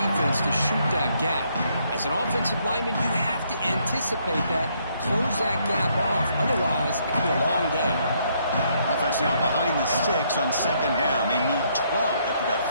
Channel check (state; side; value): inverted; both; correlation -0.71